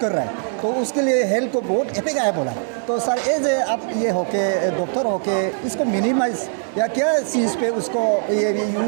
रहा है, तो उसके लिए हेल्थ को बहुत इफेक्ट आया बोला है। तो सर एज आप ये होके डॉक्टर होके इसको मिनिमाइज या क्या चीज़ पे उसको ये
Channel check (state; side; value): silent; left; digital silence